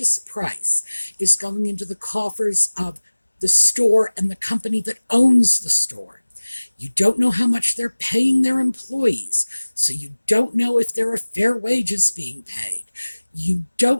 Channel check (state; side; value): inverted; both; correlation -1.00